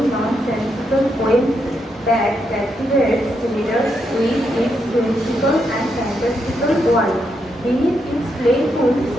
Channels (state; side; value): normal; both; correlation 0.80